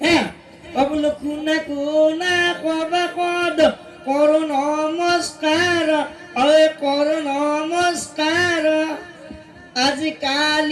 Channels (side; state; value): both; identical; correlation 1.00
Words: বোলো কোনা ক'ব কদ কৰো নমস্কাৰ কৰো নমস্কাৰ